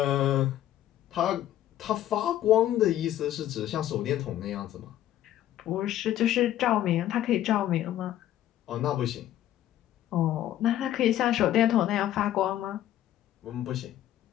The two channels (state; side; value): quieter; right; 12.6 dB